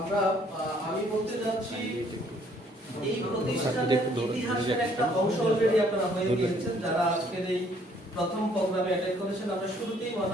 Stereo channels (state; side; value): normal; both; correlation 0.63